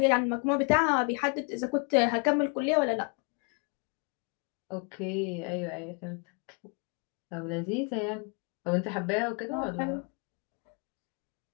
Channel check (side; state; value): right; quieter; 36.7 dB